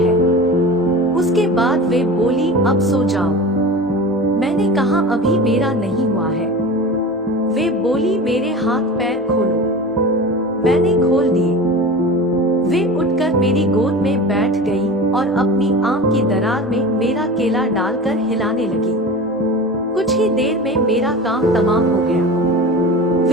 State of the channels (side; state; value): both; normal; correlation 0.33